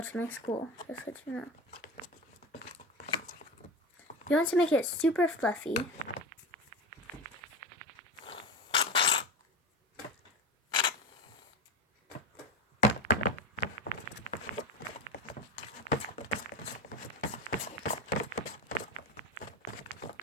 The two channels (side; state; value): both; normal; correlation 0.23